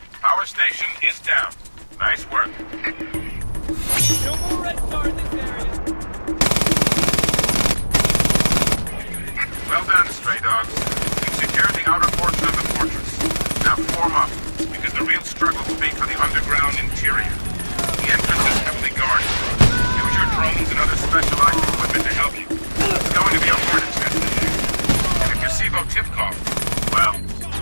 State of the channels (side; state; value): both; inverted; correlation -1.00